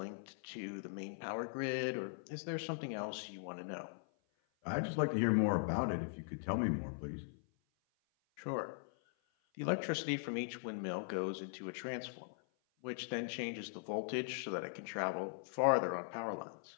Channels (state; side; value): silent; right; 51 dB below the other